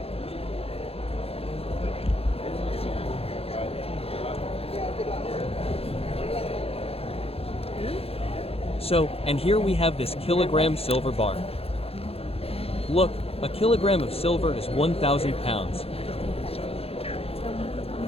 So, and here we have this kilogram silver bar. Look, a kilogram of silver is 1,000 pounds.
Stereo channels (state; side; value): late; right; 0.29 ms